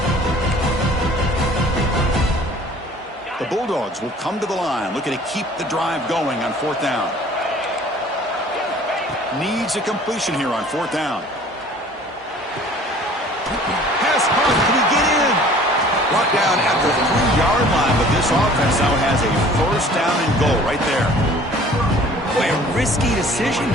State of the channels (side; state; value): both; normal; correlation 0.50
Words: The Bulldogs will come to the line, looking to keep the drive going on 4th down. Needs a completion here on 4th down. Pass punt. Can he get in? Brought down at the 3-yard line, but this offense now has a 1st down and goal right there. Boy, a risky decision